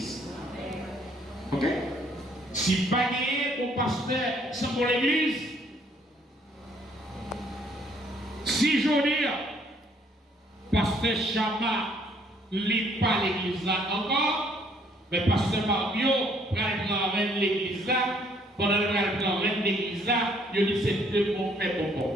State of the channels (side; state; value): both; normal; correlation 0.64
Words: Ok? Si pas gagner bon pasteur sans bon l'église, si je dis, pasteur Chama lit pas l'église là encore, mais pasteur Mario prend l'église là, pendant le prend l'église là, il dit c'est deux bons faits